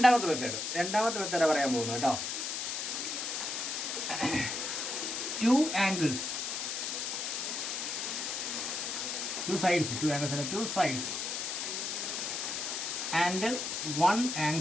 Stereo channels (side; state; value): left; noise; hiss, 3 dB below the sound